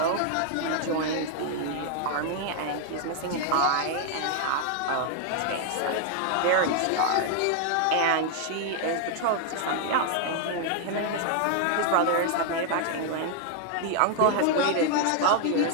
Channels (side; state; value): both; different; correlation 0.00